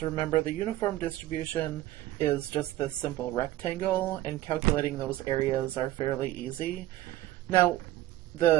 remember, the uniform distribution is just this simple rectangle, and calculating those areas are fairly easy. Now,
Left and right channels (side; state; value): left; quieter; 15.3 dB